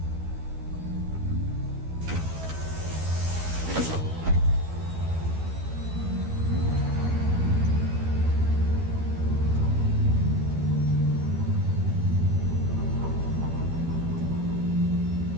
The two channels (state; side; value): late; left; 12 ms